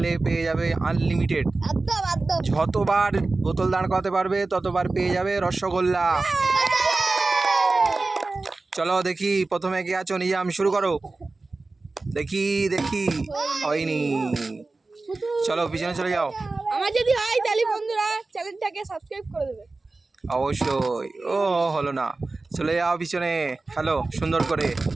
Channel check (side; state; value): left; quieter; 3.5 dB